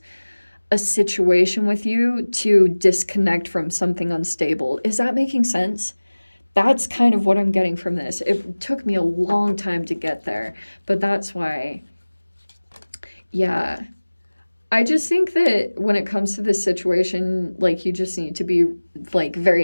a situation with you to disconnect from something unstable. Is that making sense? That's kind of what I'm getting from this. It took me a long time to get there, but that's why. Yeah. I just think that when it comes to this situation, like, you just need to be like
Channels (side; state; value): both; inverted; correlation -1.00